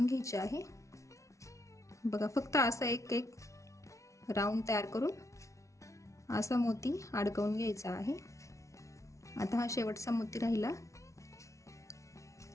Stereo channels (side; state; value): right; late; 0.14 ms